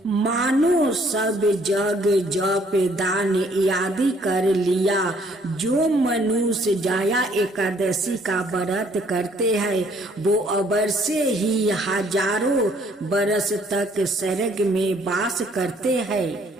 मानो सब जग जप दान आदि कर लिया। जो मनुष्य जाया एकादशी का व्रत करते हैं वो अवश्य ही हजारों बरस तक स्वर्ग में वास करते हैं।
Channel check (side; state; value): both; normal; correlation 0.63